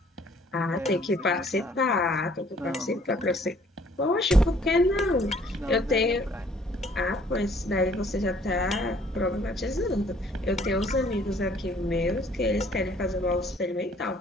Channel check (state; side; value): normal; both; correlation 0.59